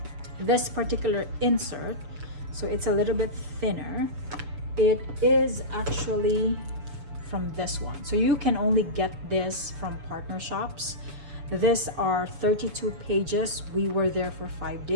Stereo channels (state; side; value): late; left; 6.9 ms